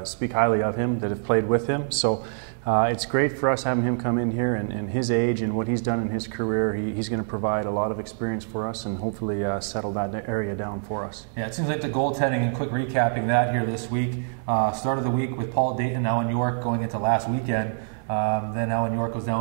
speak highly of him that have played with him. So it's great for us having him come in here, and his age and what he's done in his career, he's going to provide a lot of experience for us and hopefully settle that area down for us. Yeah, it seems like the goaltending, and quick recapping that here this week, start of the week with Paul Dayton, Alan York going into last weekend. Then Alan York goes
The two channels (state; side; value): silent; left; 61 dB below the other